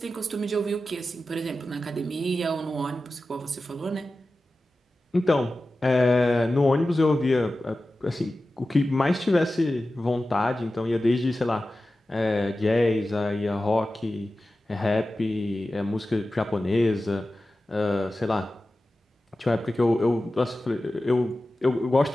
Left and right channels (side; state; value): both; normal; correlation 0.94